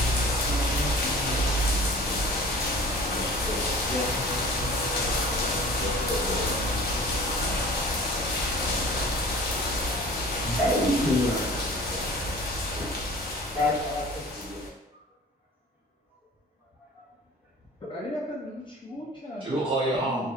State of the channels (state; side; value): normal; both; correlation 0.44